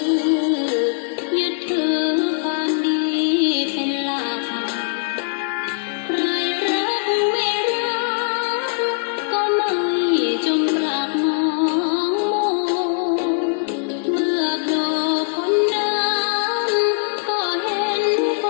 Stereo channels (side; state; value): right; silent; digital silence